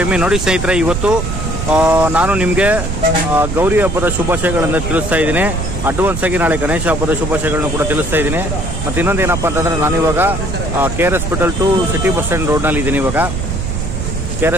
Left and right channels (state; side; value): noise; right; rumble, 3 dB below the sound